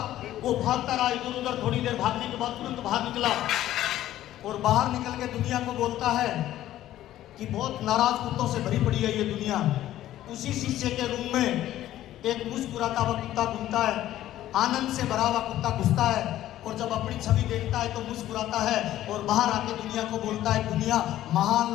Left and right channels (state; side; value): quieter; right; 13.4 dB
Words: वो भागता रहा इधर उधर, थोड़ी देर भागने के बाद तुरंत बाहर निकला और बाहर निकल के दुनिया को बोलता है कि बहुत नाराज कुत्तों से भरी पड़ी है ये दुनिया। उसी शीशे के रूम में एक मुस्कुराता हुआ कुत्ता घूमता है, आनंद से भरा हुआ कुत्ता घुसता है और जब अपनी छवि देखता है तो मुस्कुराता है और बाहर आके दुनिया को बोलता है, दुनिया महान